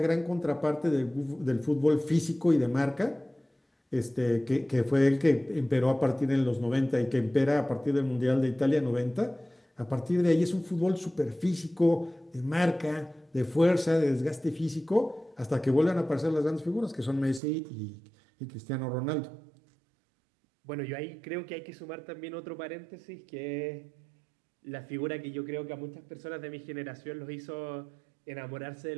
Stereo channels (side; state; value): left; drops out; at 17.4 s